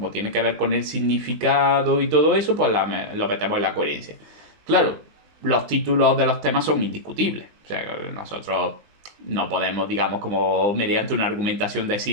tiene que ver con el significado y todo eso, pues lo metemos en la coherencia. Claro, los títulos de los temas son indiscutibles. O sea, nosotros no podemos, digamos, como mediante una argumentación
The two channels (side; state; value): left; late; 20 ms